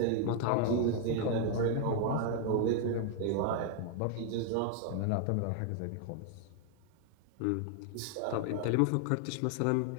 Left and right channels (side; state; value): both; different; correlation 0.00